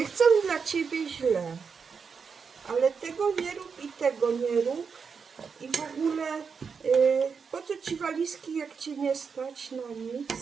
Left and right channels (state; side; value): quieter; left; 5.8 dB